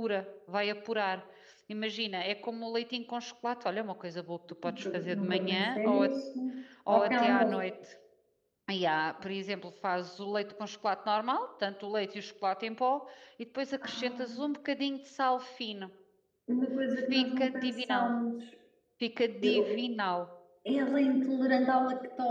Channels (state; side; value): identical; both; correlation 1.00